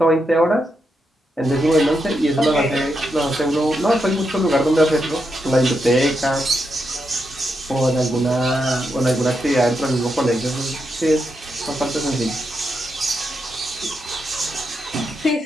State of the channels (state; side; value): normal; both; correlation 0.84